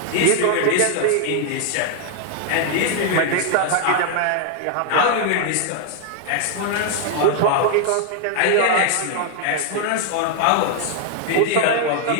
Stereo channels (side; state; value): both; different; correlation 0.00